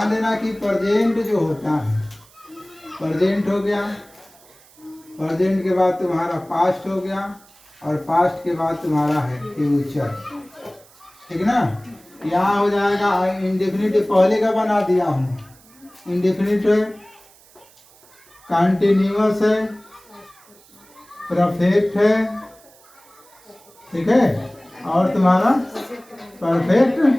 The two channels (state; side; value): noise; right; hiss, 27 dB below the sound